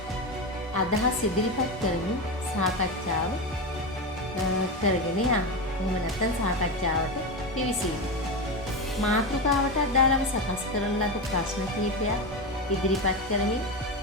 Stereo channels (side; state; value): both; normal; correlation 0.17